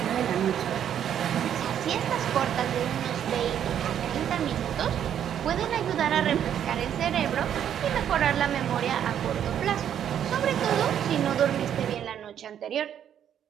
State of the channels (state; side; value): quieter; left; 9.6 dB